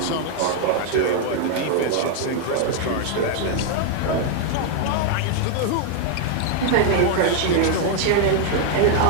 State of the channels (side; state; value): both; different; correlation 0.00